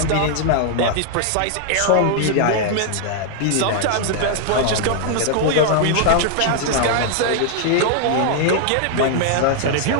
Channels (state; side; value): different; both; correlation 0.00